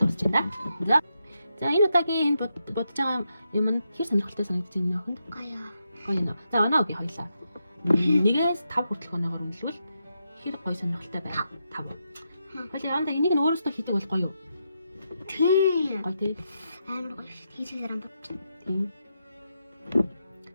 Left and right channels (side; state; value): both; inverted; correlation -0.84